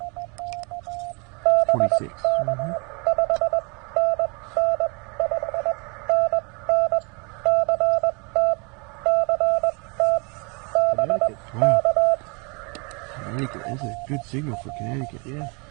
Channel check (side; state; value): left; quieter; 31.6 dB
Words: 26. Mm-hmm. Connecticut. Wow. Connecticut. That's a good signal for Connecticut. Yeah.